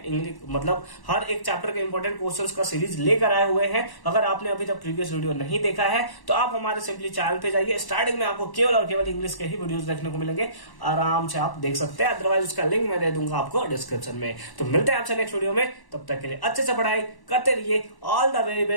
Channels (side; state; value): right; late; 1.1 ms